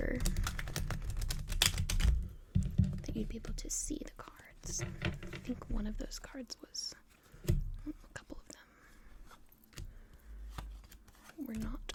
that you'd be able to see the cards. I think one of those cards was, a couple of them were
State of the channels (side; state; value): both; identical; correlation 1.00